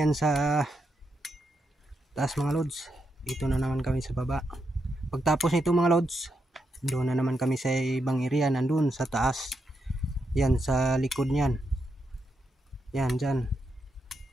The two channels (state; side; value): normal; both; correlation 0.83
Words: sa taas mga lods. Dito na naman kami sa baba. Pagtapos nito mga lods, doon na naman kami sa ibang area, nandun sa taas. Yan sa likod niyan. Yan dyan.